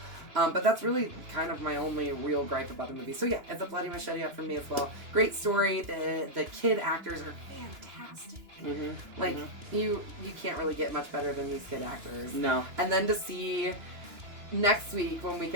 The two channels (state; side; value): late; left; 2.9 ms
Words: But that's really kind of my only real gripe about the movie. So yeah, it's a bloody machete up for me as well. Great story. The kid actors are fantastic. Mm-hmm. Like you can't really get much better than these kid actors. No. And then to see next week when we